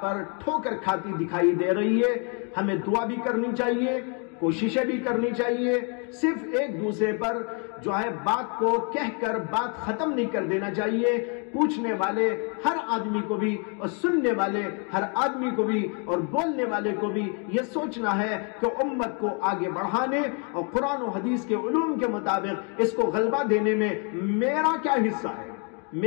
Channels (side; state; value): right; quieter; 37.4 dB